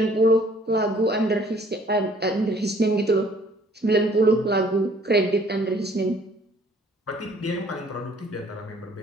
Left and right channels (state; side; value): normal; both; correlation 0.58